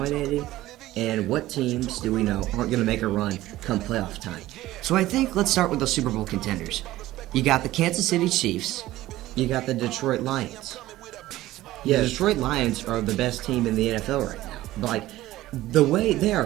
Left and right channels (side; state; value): left; quieter; 16.0 dB